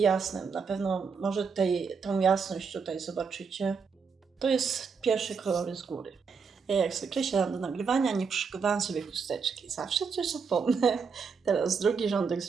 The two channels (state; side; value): quieter; left; 5.5 dB